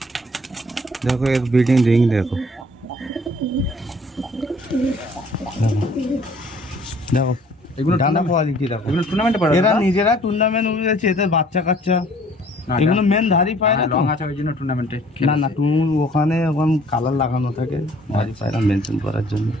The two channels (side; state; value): both; normal; correlation 0.56